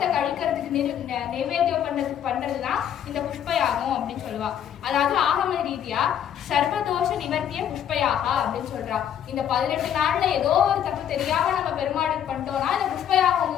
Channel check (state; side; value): quieter; right; 9.7 dB